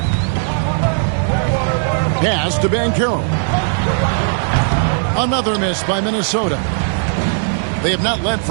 Pass to Banchero. Another miss by Minnesota. They have not led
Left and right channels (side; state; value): left; silent; 66 dB below the other